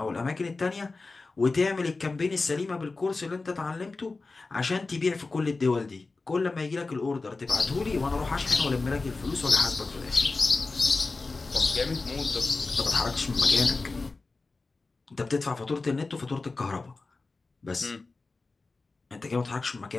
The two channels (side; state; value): right; quieter; 3.7 dB